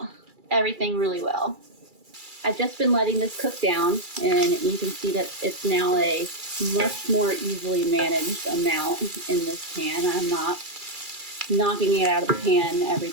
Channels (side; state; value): left; late; 2.3 ms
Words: everything really well. I've just been letting this cook down, and you can see that it's now a much more easily managed amount in this pan. I'm not knocking it out of the pan every